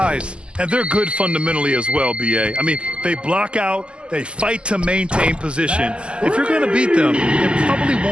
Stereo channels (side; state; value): left; late; 0.057 ms